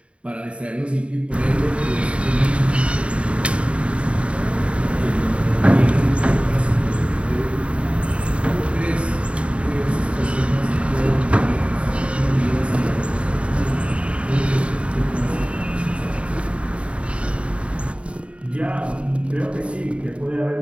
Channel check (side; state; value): left; late; 0.061 ms